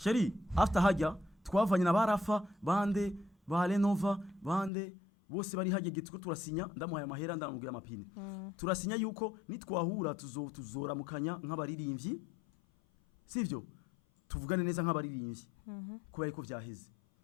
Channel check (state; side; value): drops out; right; at 4.7 s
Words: after hajya twavanye na barafa bande ba Renova bande bose bari hajye gitwe turasinya ndamuhaye amahera ndamubwira amapine turasinya yuko nitwahura tuzoramukanya nk'abaririmbyi sivyo tuvugane neza nk'abaririmbyi kubera ko vyaheze